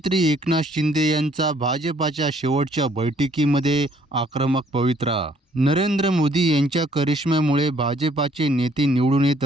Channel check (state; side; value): normal; both; correlation 0.63